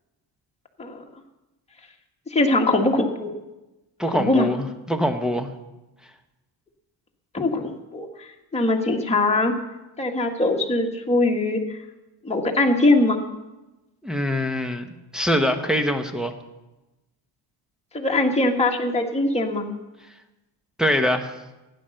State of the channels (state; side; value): normal; both; correlation 0.51